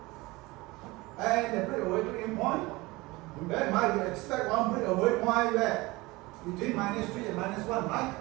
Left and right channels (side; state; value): left; quieter; 21.9 dB